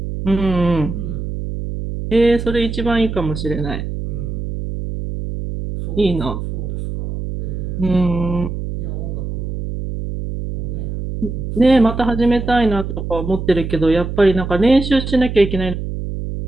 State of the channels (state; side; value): noise; right; hum, 5 dB below the sound